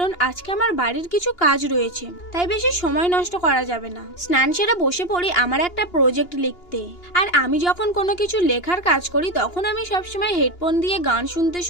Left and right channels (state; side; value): late; right; 2.8 ms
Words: আজকে আমার বাড়ির কিছু কাজ রয়েছে, তাই বেশি সময় নষ্ট করা যাবে না। স্নান সেরে বসে পড়ি আমার একটা প্রজেক্ট লিখতে। আর আমি যখন কোনো কিছু লেখার কাজ করি তখন আমি সবসময় হেডফোন দিয়ে গান শুনতে